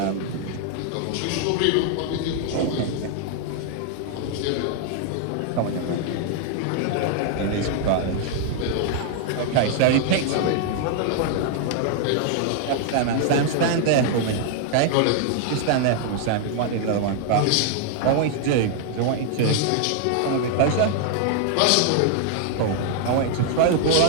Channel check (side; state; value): both; different; correlation 0.00